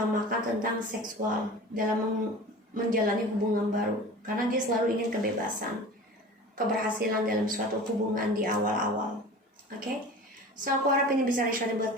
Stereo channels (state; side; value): normal; both; correlation 0.37